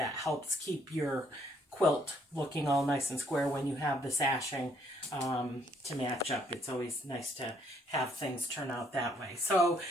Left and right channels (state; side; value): normal; both; correlation 0.67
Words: helps keep your quilt looking all nice and square when you have the sashing to match up. It's always nice to have things turn out that way. So